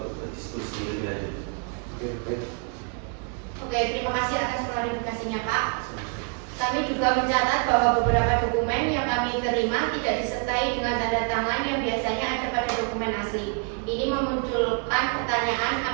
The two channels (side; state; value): left; quieter; 39.7 dB